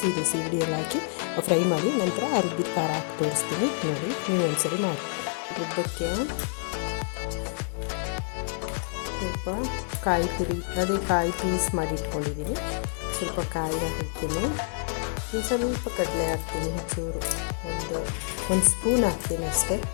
ಸೀಗಡಿ ಎಲ್ಲ ಹಾಕಿ ಫ್ರೈ ಮಾಡಿ ನಂತರ ಆ ರುಬ್ಬಿದ ಖಾರ ಹಾಕಿ ತೋರಿಸ್ತೀನಿ ನೋಡಿ. ನೀವು ಒಂದ್ಸರಿ ಮಾಡಿ. ರುಬ್ಬಕ್ಕೆ ಸ್ವಲ್ಪ ಕಾಯಿ ತುರಿ, ಅದೇ ಕಾಯಿ ಪೀಸ್ ಮಾಡಿ ಇಟ್ಕೊಂಡಿದ್ದೀನಿ. ಸ್ವಲ್ಪ ಕಾಯಿ ಹಾಕ್ತೀನಿ, ಸ್ವಲ್ಪ ಕಡಲೆ ಹಾಕ್ತೀನಿ, ಚೂರು ಒಂದು ಸ್ಪೂನ್ ಹಾಕ್ತೀನಿ ಅಷ್ಟೇ.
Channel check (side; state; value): right; silent; 60 dB below the other